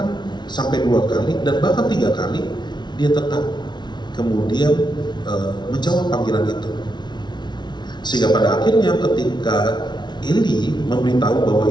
sampai 2 kali dan bahkan 3 kali dia tetap kemudian menjawab panggilan itu. Sehingga pada akhirnya ketika Eli memberitahu bahwa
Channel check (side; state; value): right; late; 0.21 ms